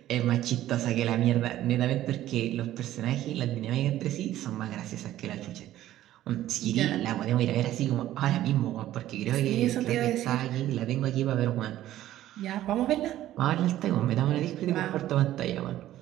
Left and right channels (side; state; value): left; quieter; 13.5 dB